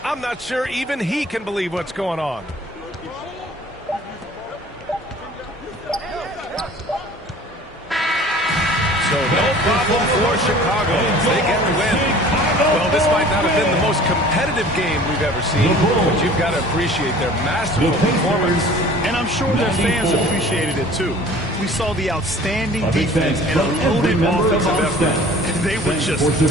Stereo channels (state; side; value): normal; both; correlation 0.47